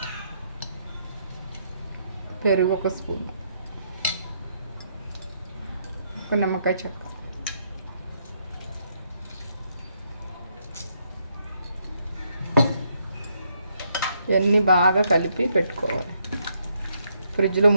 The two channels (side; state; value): both; inverted; correlation -0.75